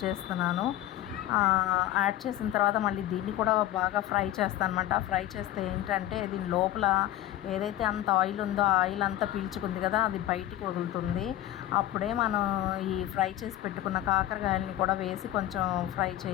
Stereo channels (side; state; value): right; quieter; 13.7 dB